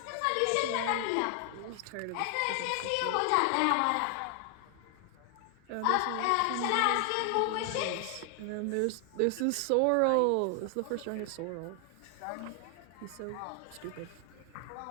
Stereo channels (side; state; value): both; different; correlation 0.00